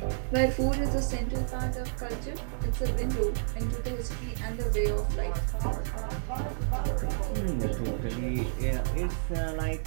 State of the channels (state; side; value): silent; left; digital silence